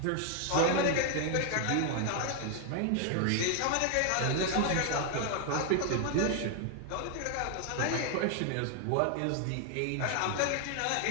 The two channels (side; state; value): both; different; correlation 0.00